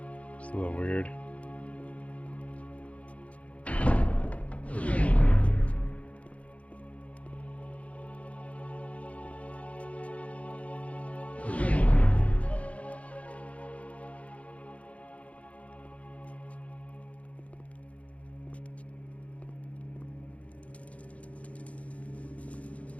It's a little weird.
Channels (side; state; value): right; late; 0.065 ms